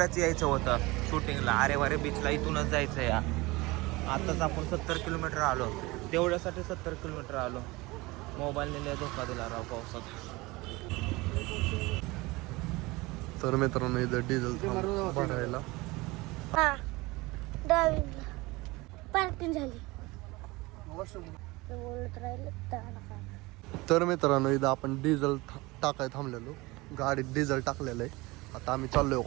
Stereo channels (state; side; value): quieter; left; 22.3 dB